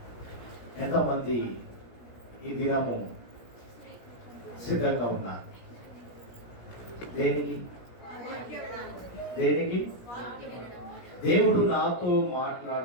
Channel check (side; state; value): right; late; 17 ms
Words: ఎంతమంది ఈ దినము సిద్ధంగా ఉన్నారు? దేనికి? దేవుడు నాతో